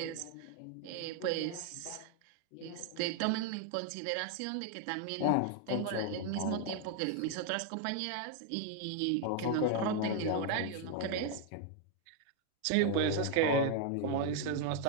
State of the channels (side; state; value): both; different; correlation 0.00